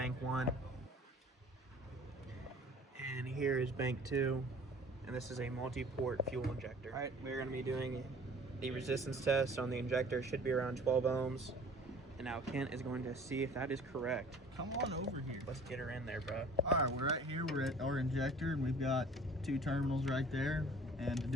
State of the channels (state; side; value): normal; both; correlation 0.48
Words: 1. And here is bank 2. And this is a multi-port fuel injector. Alright, we're going to be doing the resistance test on the injector. Should be around 12 ohms. And now Kent is going to see if that is correct. Come on over here. Let's get her in there, bro. Alright, we're right here. We're at our injector and we've got 2 terminals right there. And to